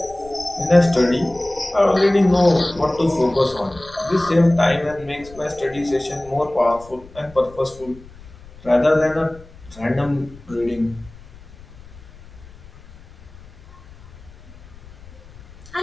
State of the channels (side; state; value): left; noise; rumble, 21 dB below the sound